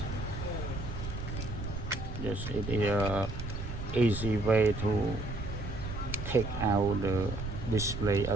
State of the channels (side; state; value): right; noise; rumble, 6 dB below the sound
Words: Yes, it is a easy way to take out the display